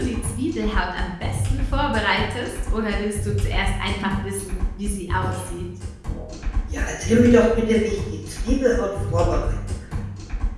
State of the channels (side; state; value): both; identical; correlation 1.00